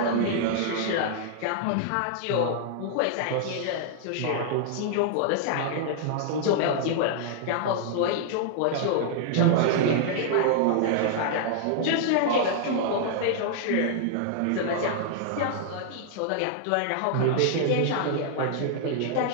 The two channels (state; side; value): different; both; correlation -0.01